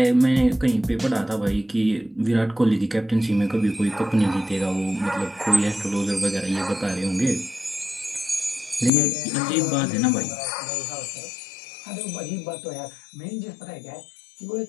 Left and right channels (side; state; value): right; drops out; at 8.9 s